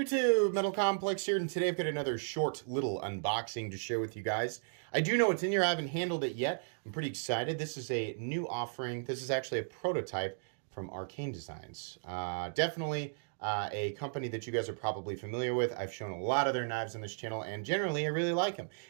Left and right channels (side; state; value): left; silent; digital silence